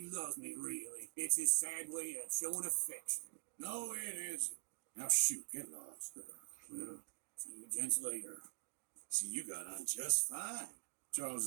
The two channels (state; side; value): silent; left; digital silence